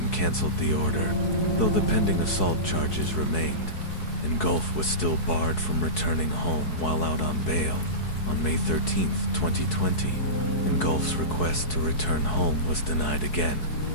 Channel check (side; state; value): right; late; 4.7 ms